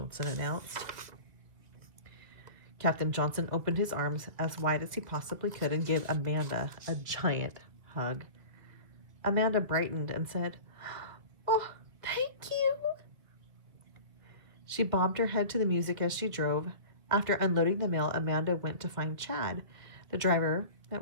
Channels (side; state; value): left; late; 1.8 ms